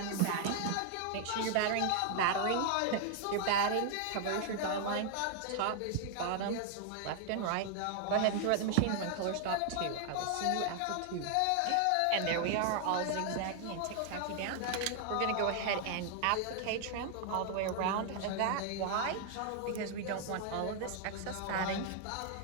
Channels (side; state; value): both; different; correlation 0.00